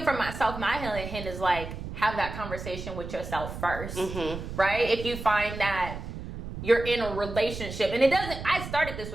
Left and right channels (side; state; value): right; noise; rumble, 9 dB below the sound